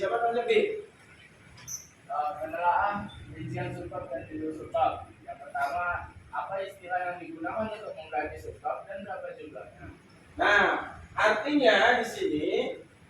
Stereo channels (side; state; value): both; identical; correlation 1.00